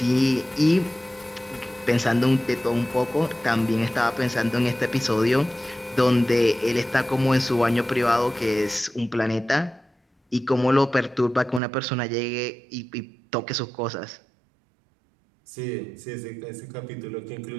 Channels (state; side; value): drops out; left; at 11.6 s